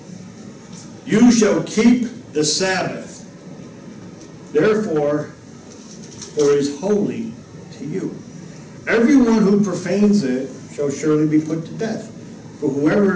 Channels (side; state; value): both; identical; correlation 1.00